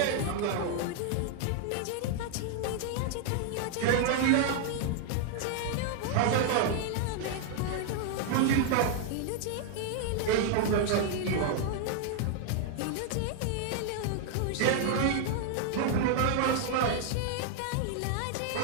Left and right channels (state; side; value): different; both; correlation 0.00